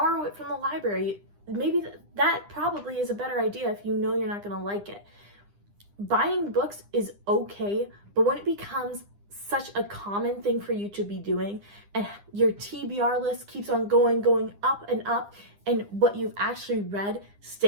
it from the library. Maybe that probably is a better idea if you know you're not going to like it. Buying books is okay, but when it becomes such a common thing for you to be doing and your TBR list keeps on going up and up, and what you've actually read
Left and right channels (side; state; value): left; late; 9.9 ms